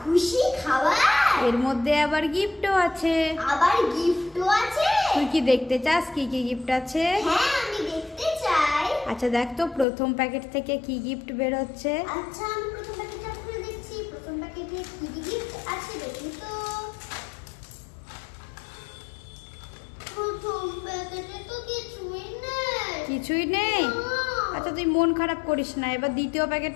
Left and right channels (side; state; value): right; drops out; at 9.9 s